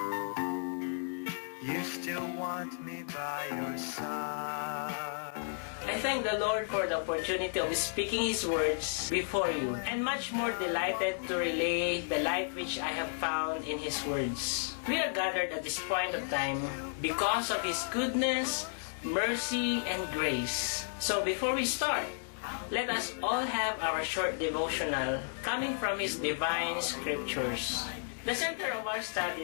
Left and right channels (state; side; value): silent; right; 56 dB below the other